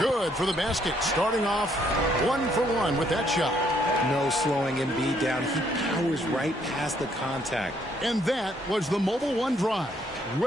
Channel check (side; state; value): both; normal; correlation 0.69